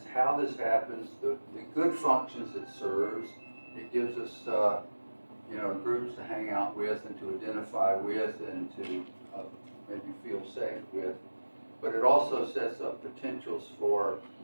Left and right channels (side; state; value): both; inverted; correlation -1.00